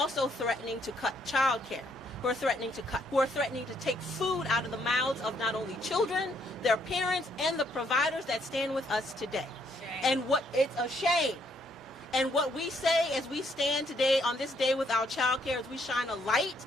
threatening to cut childcare, who are threatening to take food out of the mouths of not only children, their parents, and the providers that stand with us today. And it's a shame. And what we say as we stand today on this day with our childcare is we shine a light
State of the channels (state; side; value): normal; both; correlation 0.71